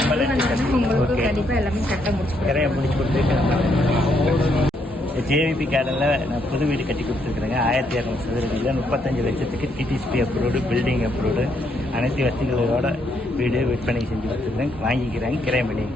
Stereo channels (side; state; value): both; normal; correlation 0.74